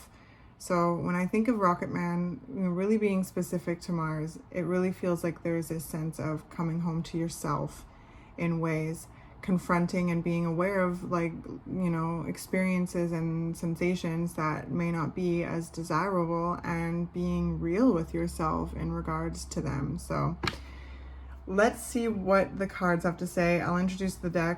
So when I think of Rocketman, you know, really being specific to Mars, it really feels like there's this sense of coming home to yourself in ways, confronting and being aware of, like, you know, experiences and sensations that may not be as desirable, and being real with yourself in regards to them. So let's see what the cards have to say. I'll introduce the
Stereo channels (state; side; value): identical; both; correlation 1.00